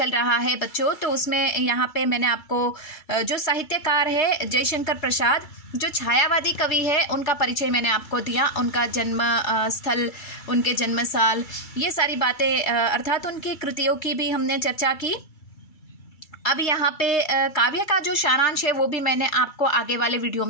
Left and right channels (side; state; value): right; late; 2.3 ms